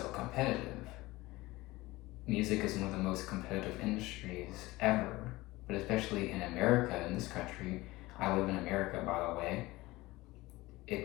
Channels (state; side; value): quieter; right; 19.8 dB